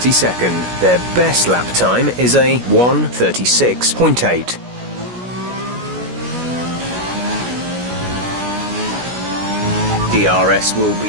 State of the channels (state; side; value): late; left; 16 ms